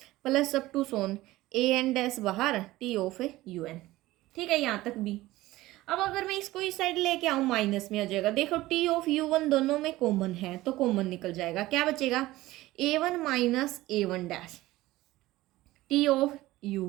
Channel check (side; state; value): left; quieter; 17.5 dB